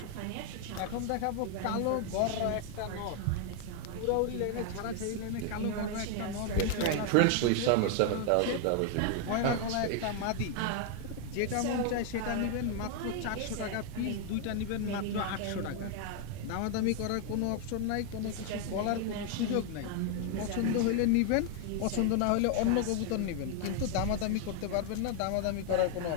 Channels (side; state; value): both; different; correlation 0.00